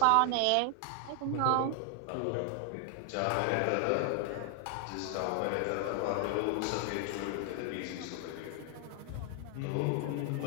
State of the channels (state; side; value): different; both; correlation 0.00